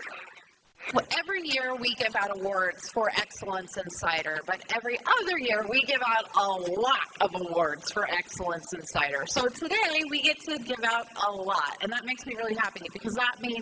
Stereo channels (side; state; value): both; identical; correlation 1.00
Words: Well, every year we give out awards for excellence in cider, but every other year we give out a lot of awards for excellence in cider. So today we get to give out a lot, and that makes me really happy because that